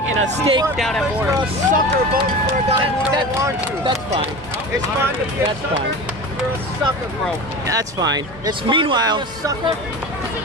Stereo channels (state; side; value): normal; both; correlation 0.31